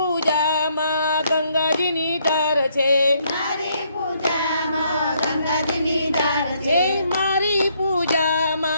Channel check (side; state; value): both; inverted; correlation -0.71